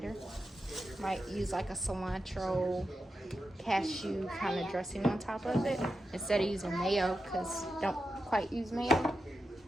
Might use like a cilantro cashew kind of dressing on top of it instead of using mayo, because don't quite use mayo.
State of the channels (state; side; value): normal; both; correlation 0.89